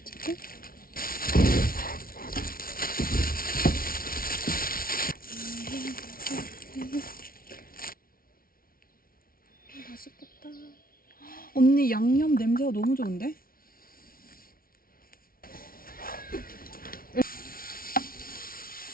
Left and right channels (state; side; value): late; right; 0.43 ms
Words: 찍고. 맛있겠다. 언니 양념 냄새가 너무 좋은데?